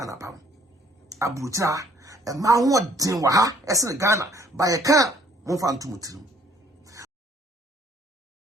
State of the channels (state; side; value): normal; both; correlation 0.60